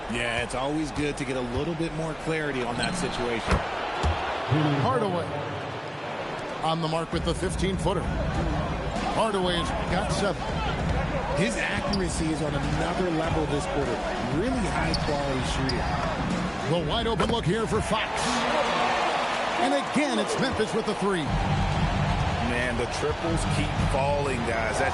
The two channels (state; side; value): identical; both; correlation 1.00